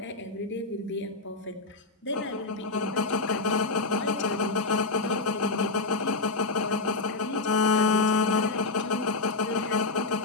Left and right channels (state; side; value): quieter; right; 3.4 dB